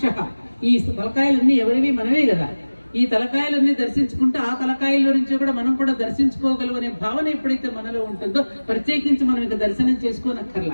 ఈ తలకాయలన్నీ ఎవరివి? మనమే కదా. ఈ తలకాయలన్నీ దర్శించుకుంటే ఆ తలకాయల నుంచి కూడా మనం కూడా దర్శించుకోగలం అనే భావన ఎప్పుడైతే మనలో ఉంటుందో ప్రత్యేకించి మనం ఇంకా దర్శనం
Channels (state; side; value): inverted; both; correlation -1.00